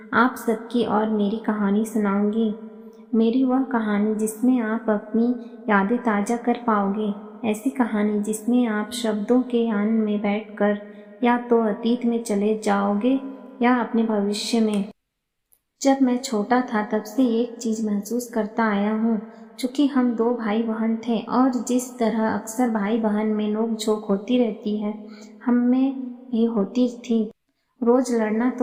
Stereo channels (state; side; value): identical; both; correlation 1.00